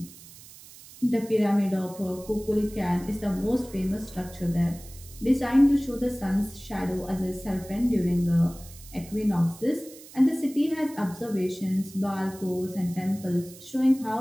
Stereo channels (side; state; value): right; noise; hiss, 19 dB below the sound